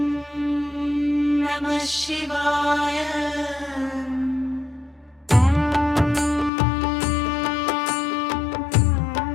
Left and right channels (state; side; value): drops out; right; at 6.5 s